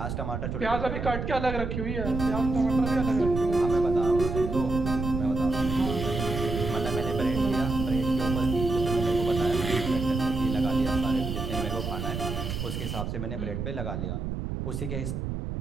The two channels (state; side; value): noise; right; rumble, 4 dB below the sound